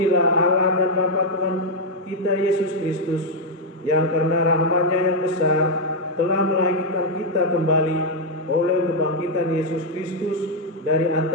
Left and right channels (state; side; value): normal; both; correlation -0.01